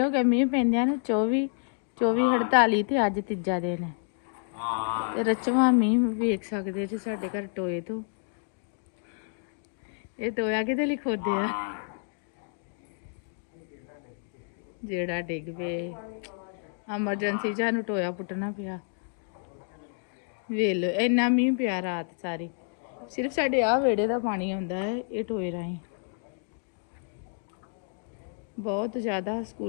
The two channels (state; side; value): silent; right; 58 dB below the other